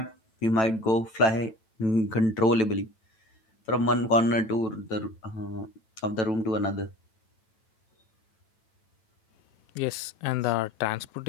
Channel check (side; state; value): right; late; 9.0 ms